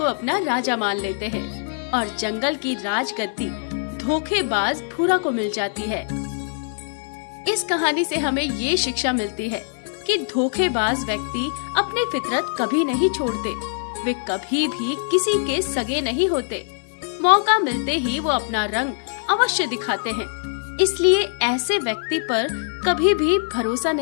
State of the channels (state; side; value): silent; right; 64 dB below the other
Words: अपना राजा मान लेते हैं और जंगल की राजगद्दी धोखेबाज भूरा को मिल जाती है। इस कहानी से हमें ये शिक्षा मिलती है कि धोखेबाज व्यक्ति अपनी फितरत कभी नहीं छोड़ते। वे कभी भी किसी के सगे नहीं होते। मौका मिलते ही वो अपना रंग अवश्य दिखाते हैं। इसलिए ऐसे व्यक्ति पर कभी भी भरोसा